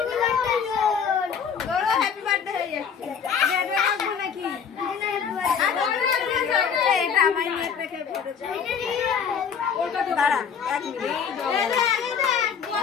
হ্যাপি বার্থডে হয়ে যাচ্ছে নাকি? এটা আমার নিয়ে রেখে দাঁড়া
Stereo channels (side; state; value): right; quieter; 6.9 dB